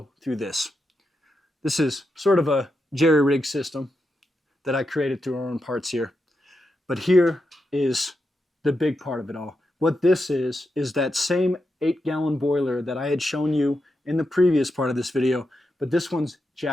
through this. This is sort of a jerry-rig system that I created through our own parts here. But here is the big part of it all. What this is that same 8-gallon boiler that I had shown you in the previous part of this video, but this one's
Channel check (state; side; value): normal; both; correlation 0.86